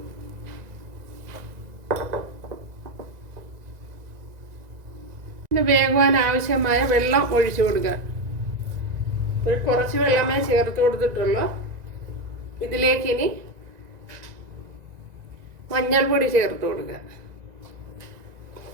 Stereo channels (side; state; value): left; late; 1.9 ms